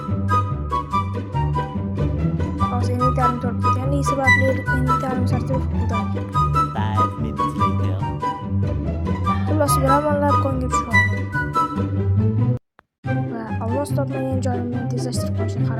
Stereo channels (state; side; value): identical; both; correlation 1.00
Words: Hozir inventarim to'lib ketganligi sababli inventarim sertifikat bo'ldi. 5 minutes later. Xullas, biramonlar konga tushib oldim. Va olmos topmagan joyimni tezlashtirib qo'yishga